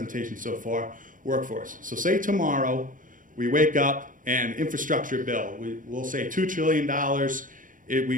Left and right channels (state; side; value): late; left; 0.39 ms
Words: so far. Workforce. So say tomorrow we wake up and infrastructure bill, we'll say $2 trillion.